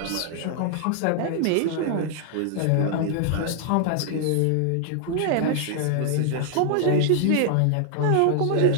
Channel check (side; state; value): both; different; correlation 0.00